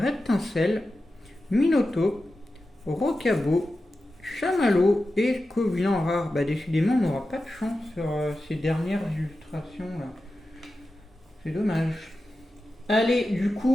Minoto, Rocabo, Chamallow et Covian rare. Bah décidément on n'aura pas de chance sur ces dernières illustrations là. C'est dommage. Allez, du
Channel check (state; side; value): normal; both; correlation 0.92